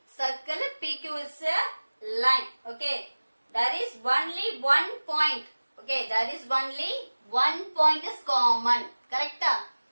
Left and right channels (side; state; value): both; inverted; correlation -1.00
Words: circle PQ is a line. Okay, there is only one point. Okay, there is only one point is common. கரெக்ட்டா?